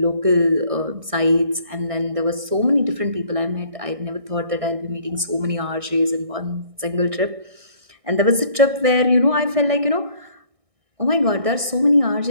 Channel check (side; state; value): left; late; 1.6 ms